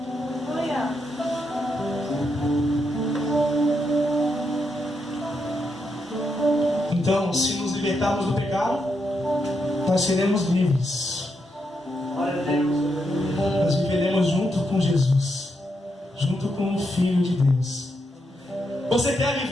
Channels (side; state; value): both; normal; correlation 0.81